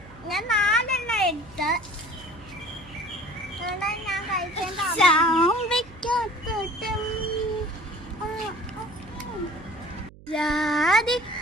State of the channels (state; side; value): noise; right; hum, 21 dB below the sound